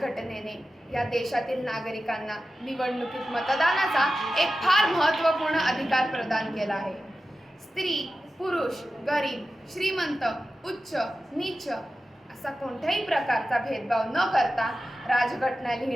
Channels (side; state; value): both; normal; correlation 0.93